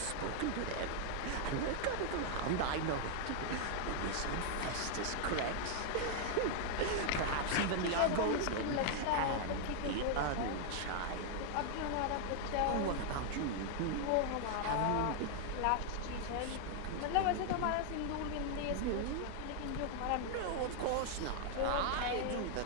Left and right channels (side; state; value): both; different; correlation 0.00